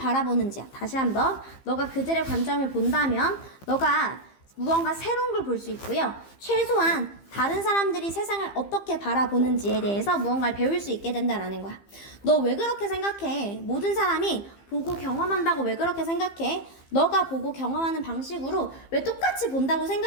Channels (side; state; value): right; late; 15 ms